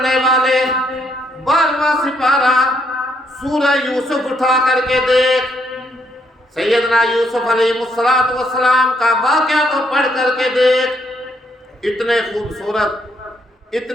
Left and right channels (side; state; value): both; normal; correlation 0.73